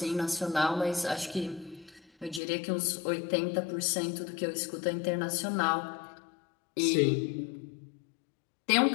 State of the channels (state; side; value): drops out; right; at 2.4 s